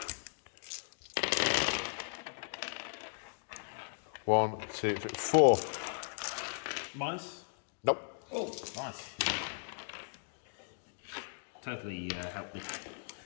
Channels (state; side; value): silent; right; digital silence